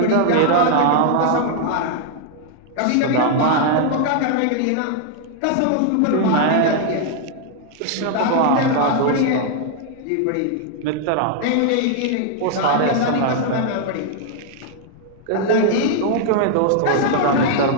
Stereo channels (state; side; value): different; both; correlation 0.00